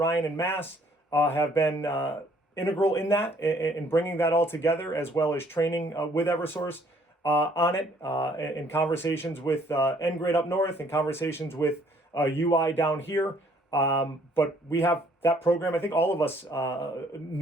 in Mass have been integral in that, in bringing that all together, as well as training with Eversource on it, in conversations with NGrid up north, and conversations with UI down here. But we have that program. I think all of us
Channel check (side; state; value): both; normal; correlation 0.62